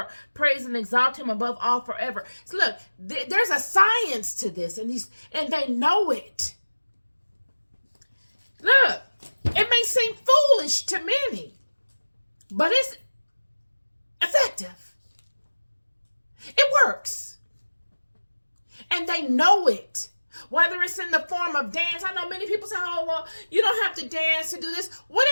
praise and exalt him above all forever. So look, there's a science to this, and they know it. Look, it may seem foolish to many, but it's effective. It works. And they know it. Whether it's in the form of dance. I know many people say, oh, well, you don't have to dance to do this.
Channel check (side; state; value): both; inverted; correlation -1.00